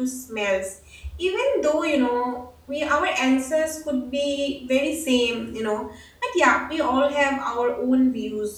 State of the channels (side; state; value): both; identical; correlation 1.00